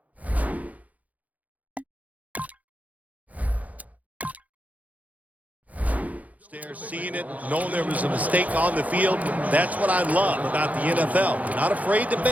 there, seeing it, knowing there was a mistake on the field. That's what I love about the NFL. They're not afraid to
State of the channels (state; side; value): late; left; 0.074 ms